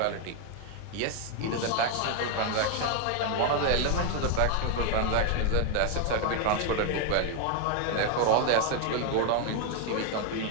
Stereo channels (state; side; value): different; both; correlation 0.01